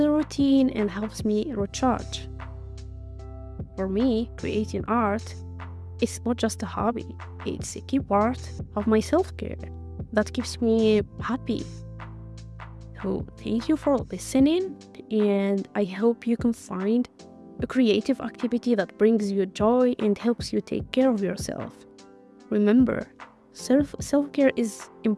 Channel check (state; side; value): identical; both; correlation 1.00